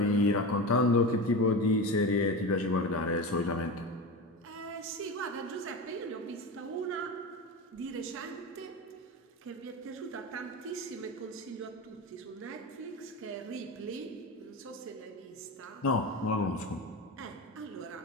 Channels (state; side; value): normal; both; correlation 0.24